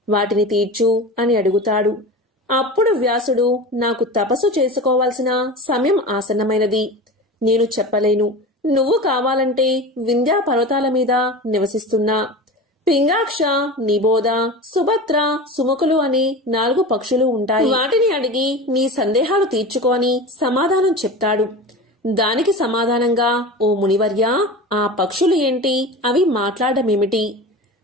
వాటిని తీర్చు అని అడుగుతాడు. అప్పుడు వ్యాసుడు, నాకు తపస్సు చేసుకోవాల్సిన సమయం ఆసన్నమైనది, నేను చెప్పలేను. నువ్వు కావాలంటే వింధ్యా పర్వతాల మీద నివసిస్తున్నా పింగాక్ష, నిబోధ, సుభద్ర, సుముఖులు అని 4 పక్షులు ఉంటాయి. వాటిని అడిగి నీ సందేహాలు తీర్చుకోని సమాధానం చెప్తాడు. దానికి సమాధానంగా, ఓ మునివర్య, ఆ పక్షులు ఏంటి, అవి మాట్లాడమేమిటి,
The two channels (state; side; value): normal; both; correlation 0.31